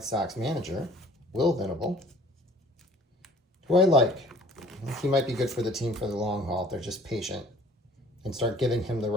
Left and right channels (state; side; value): normal; both; correlation 0.51